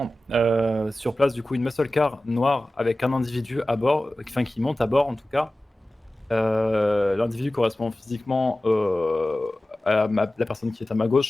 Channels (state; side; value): normal; both; correlation 0.96